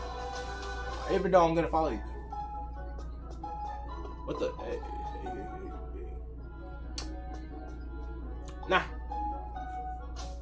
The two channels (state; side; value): identical; both; correlation 1.00